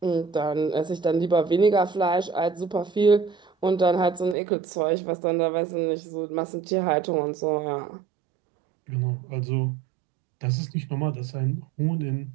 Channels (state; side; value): drops out; left; at 4.4 s